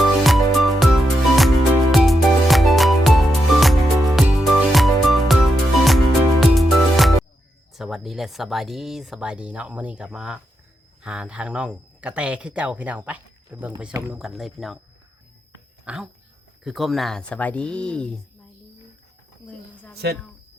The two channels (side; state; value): both; normal; correlation 0.84